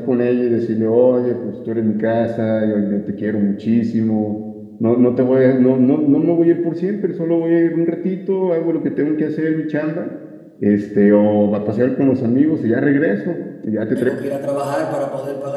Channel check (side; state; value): both; identical; correlation 1.00